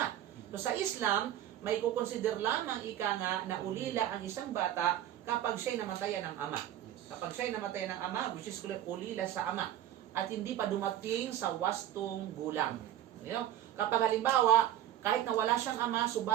So sa Islam, may kukonsider lamang ika nga na ulila ang isang bata kapag siya'y namatayan ng ama. Kapag siya'y namatay ng ama, which is ulila sa ama, at hindi pa dumating sa wastong gulang. You know? Kapag halimbawa, kahit na wala siyang ama,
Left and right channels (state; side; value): quieter; left; 12.0 dB